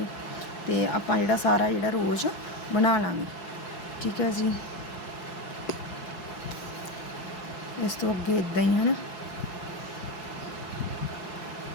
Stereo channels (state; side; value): late; right; 4.7 ms